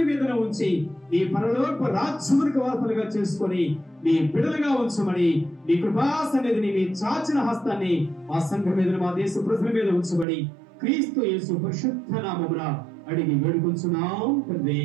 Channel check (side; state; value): left; drops out; at 10.2 s